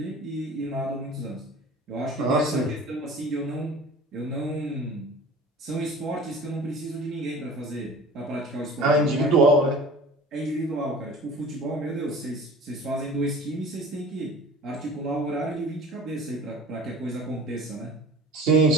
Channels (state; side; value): normal; both; correlation 0.42